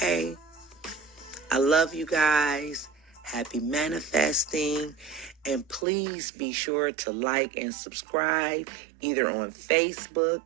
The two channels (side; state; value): left; drops out; at 5.9 s